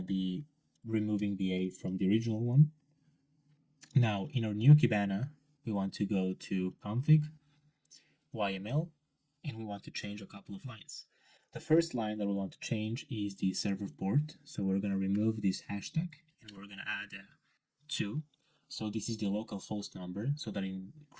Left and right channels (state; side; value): identical; both; correlation 1.00